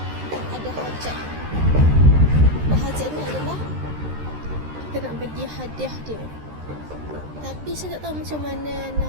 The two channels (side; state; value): left; late; 13 ms